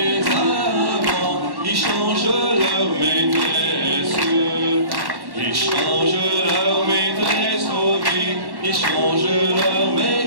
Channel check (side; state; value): left; late; 1.1 ms